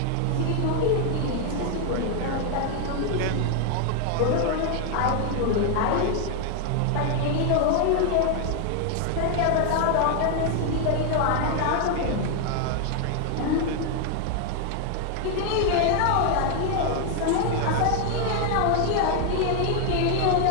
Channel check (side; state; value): both; different; correlation 0.00